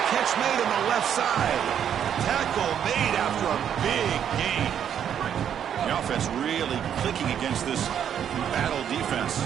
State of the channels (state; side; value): quieter; left; 9.0 dB